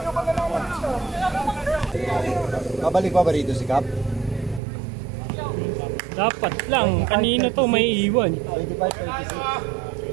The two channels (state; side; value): drops out; left; at 4.6 s